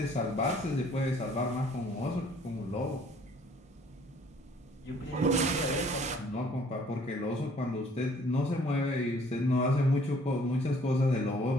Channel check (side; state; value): both; normal; correlation 0.58